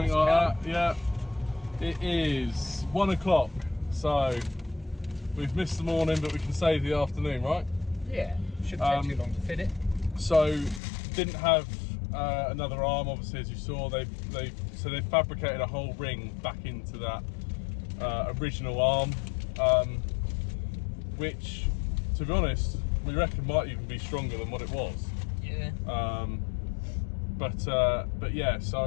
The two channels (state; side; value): drops out; right; at 10.8 s